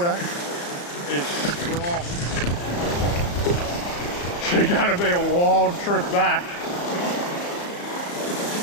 is strong. It's going to be a wild trip back.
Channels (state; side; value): late; right; 34 ms